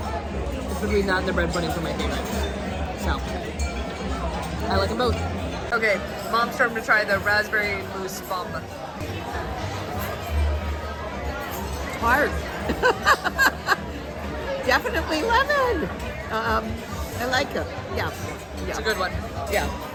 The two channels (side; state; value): both; identical; correlation 1.00